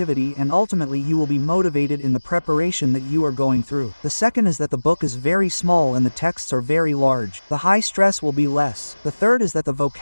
and ultimately you will be motivated in the preparation that you are going through. The second is that the book is very small and the texts are very large. The high stress will be less. The third is that the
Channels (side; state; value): both; inverted; correlation -1.00